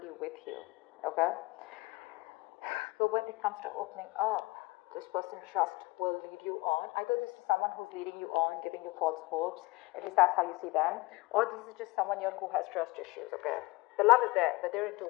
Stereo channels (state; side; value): quieter; right; 22.8 dB